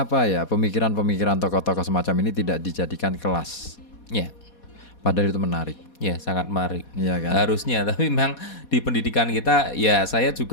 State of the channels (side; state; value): right; late; 4.2 ms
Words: ya pemikiran-pemikiran tokoh-tokoh semacam ini tidak dijadikan kelas? Padahal itu menarik. Ya, sangat menarik. Iya kan? Harusnya, tapi memang di pendidikan kita, ya saya